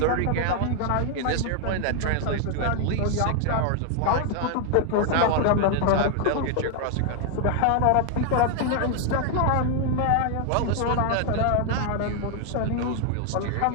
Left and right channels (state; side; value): different; both; correlation 0.00